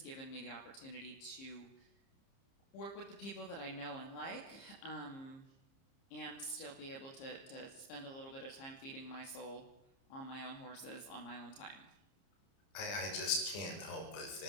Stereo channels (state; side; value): late; right; 30 ms